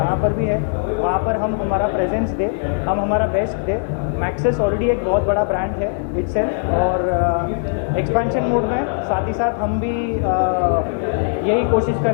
पर भी है, वहाँ पर हम हमारा प्रेजेंस दें, हम हमारा बेस्ट दें। मैक्सिस ऑलरेडी एक बहुत बड़ा ब्रांड है इटसेल्फ और एक्सपेंशन मोड में साथ ही साथ हम भी यही कोशिश कर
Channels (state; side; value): silent; right; digital silence